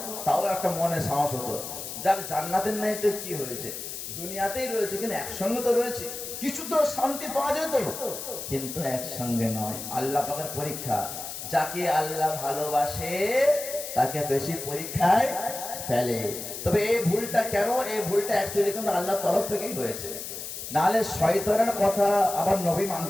তাও একটা মনে সাহস হতো, যাক জান্নাতের নাই তো কি হয়েছে, দুনিয়াতেই রয়েছে, কিন্তু একসঙ্গে তো রয়েছে, কিছু তো শান্তি পাওয়া যেত। কিন্তু একসঙ্গে নয়, আল্লাহ পাকের পরীক্ষা। যাকে আল্লাহ ভালোবাসে তাকে বেশি পরীক্ষায় ফেলে। তবে এই ভুলটা কেন? এই ভুলটা অ্যাকচুয়ালি কিন্তু আল্লাহর তরফ থেকেই হয়েছে। নাহলে শয়তানের কথা আবার নবী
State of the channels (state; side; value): noise; left; hiss, 8 dB below the sound